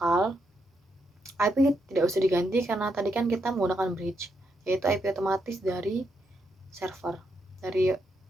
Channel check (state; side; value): normal; both; correlation 0.80